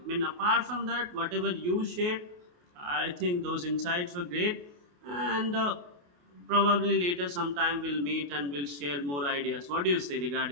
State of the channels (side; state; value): left; late; 28 ms